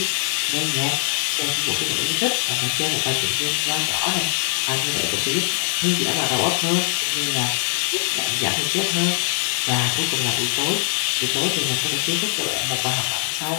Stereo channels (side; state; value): right; silent; digital silence